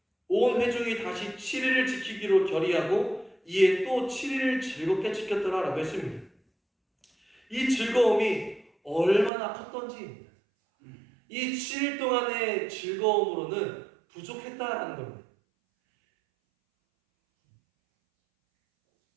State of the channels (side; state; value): left; drops out; at 9.3 s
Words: 온 회중이 다시 7일을 지키기로 결의하고 이에 또 7일을 즐겁게 지켰더라라고 했습니다. 이 즐거움이 얼마나 컸던지입니다. 이 7일 동안의 즐거움으로는 부족했다라는 겁니다.